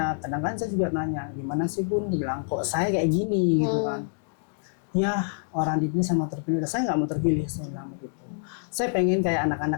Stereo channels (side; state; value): right; silent; digital silence